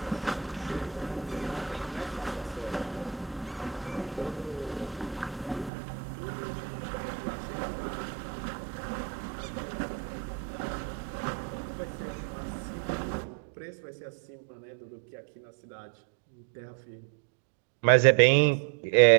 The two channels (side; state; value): left; drops out; at 5.7 s